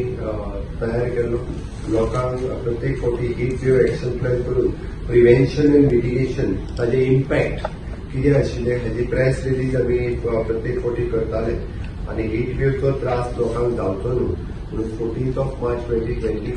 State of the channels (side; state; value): both; identical; correlation 1.00